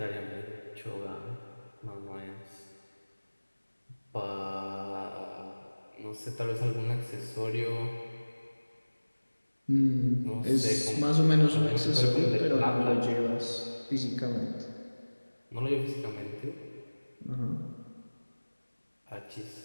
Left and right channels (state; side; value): inverted; both; correlation -1.00